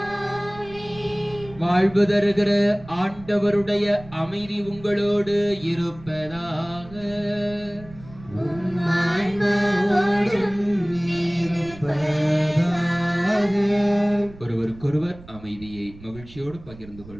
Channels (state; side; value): noise; right; rumble, 19 dB below the sound